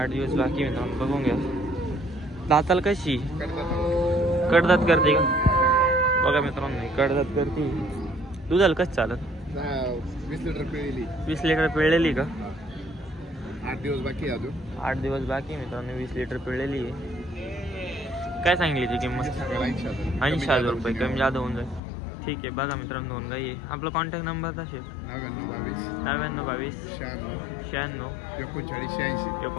दिवस बाकी मित्रांनो, बघून घ्या। दाताला कशी? कडदात करते का? बघा मित्रांनो, कडदात करते। दुधाला कसं चालत? 20 लिटर पिळलेली। 20 लिटर पिळलेली का? 8 दिवस बाकी अजून। 8 दिवस बाकी मित्रांनो, 20 लिटर पिळलेली आहे। काय सांगली ती किंमत? 80,000 रुपये। कमी जादा होऊन जाईल। ठीक आहे। बघा मित्रांनो, दोन गाई आहे। आपला कॉन्टॅक्ट नंबर असेल 9922 96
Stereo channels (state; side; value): drops out; right; at 21.8 s